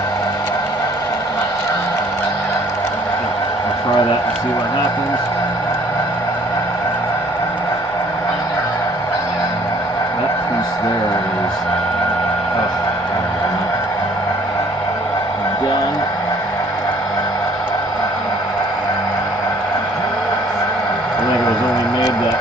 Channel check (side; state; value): both; normal; correlation 0.58